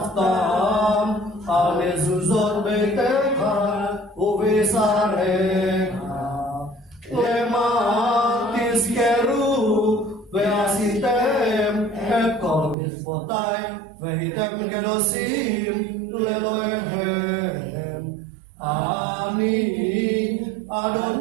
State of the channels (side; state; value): left; drops out; at 12.8 s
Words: alezuzot betecha, uvisarecha, Tizkeru ve'asitem et kol mitzvotai vehitem kedosim lelohem. Ani